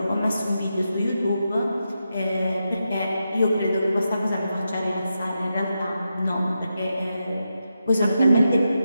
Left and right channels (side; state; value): both; inverted; correlation -0.87